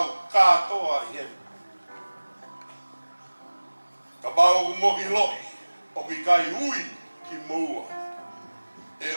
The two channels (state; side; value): inverted; both; correlation -1.00